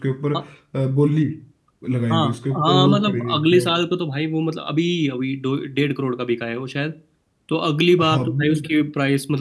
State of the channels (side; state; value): both; identical; correlation 1.00